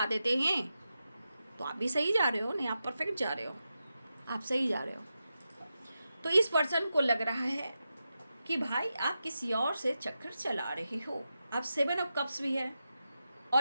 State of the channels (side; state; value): both; inverted; correlation -0.90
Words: देते हैं। तो आप भी सही जा रहे हो, नहीं आप परफेक्ट जा रहे हो, आप सही जा रहे हो। तो इस पर्सन को लग रहा है कि भाई आप किसी और से चक्कर चला रहे हो। अब 7 ऑफ कप्स भी है